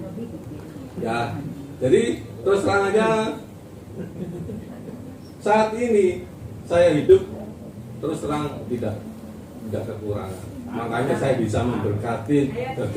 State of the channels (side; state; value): both; identical; correlation 1.00